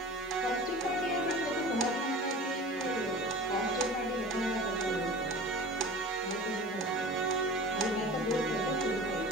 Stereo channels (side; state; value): both; normal; correlation 0.37